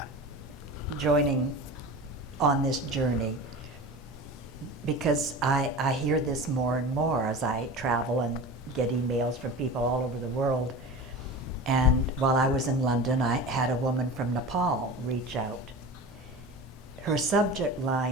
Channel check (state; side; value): normal; both; correlation 0.32